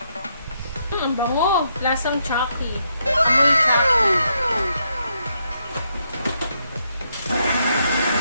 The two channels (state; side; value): inverted; both; correlation -0.78